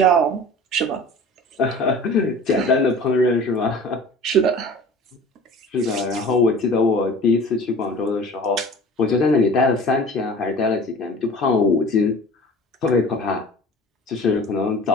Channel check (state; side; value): normal; both; correlation 0.42